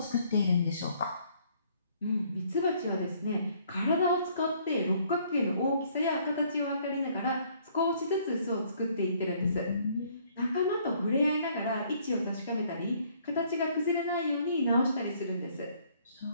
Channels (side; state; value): both; inverted; correlation -0.63